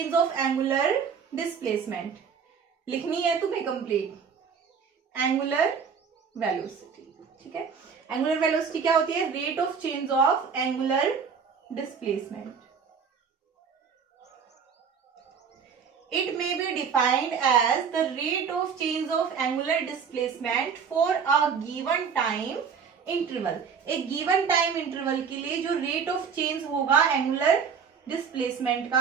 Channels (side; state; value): left; quieter; 6.5 dB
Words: of angular displacement. लिखनी है तुम्हें कंप्लीट, एंगुलर वेलोसिटी, ठीक है। एंगुलर वेलोसिटी क्या होती है, rate of change of angular displacement. It may be defined as the rate of change of angular displacement for a given time interval। एक given time interval के लिए जो rate of change होगा angular displacement